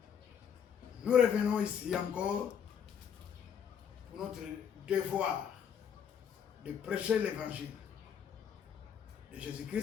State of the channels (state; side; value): quieter; right; 7.9 dB